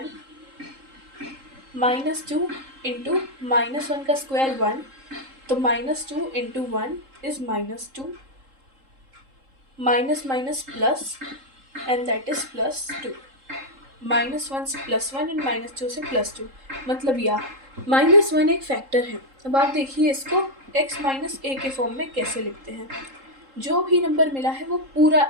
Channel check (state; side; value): late; left; 3.7 ms